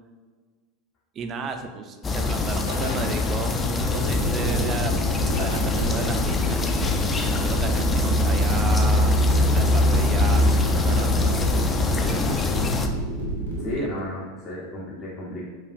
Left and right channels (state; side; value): normal; both; correlation 0.50